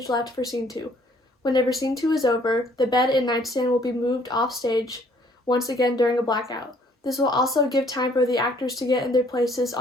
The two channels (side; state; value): both; normal; correlation 0.61